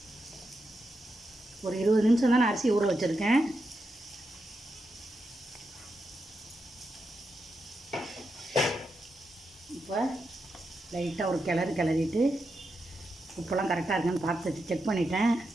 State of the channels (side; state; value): both; normal; correlation 0.86